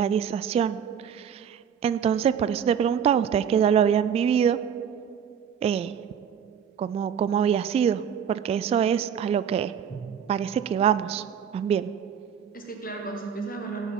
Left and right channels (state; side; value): quieter; left; 8.0 dB